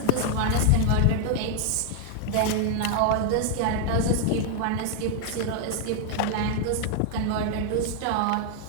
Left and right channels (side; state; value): both; different; correlation 0.00